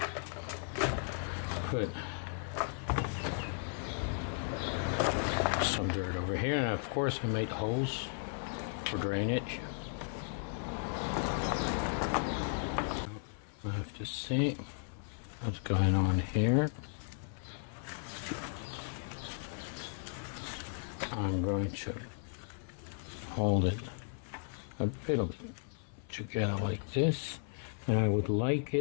put some dirt over here, and of course I made holes for drainage. I have to see what's going on here. I'm going to hold it a little bit together like this, and I would like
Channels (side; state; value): right; silent; 54 dB below the other